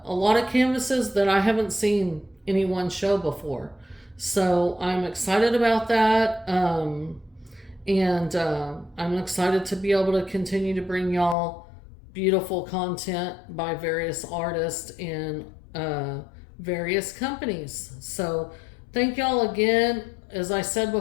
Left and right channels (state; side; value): drops out; right; at 11.4 s